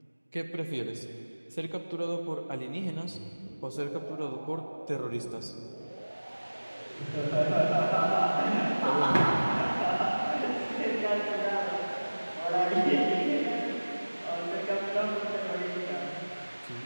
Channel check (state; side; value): inverted; both; correlation -1.00